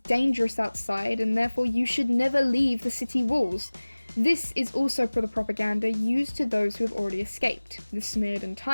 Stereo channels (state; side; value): inverted; both; correlation -1.00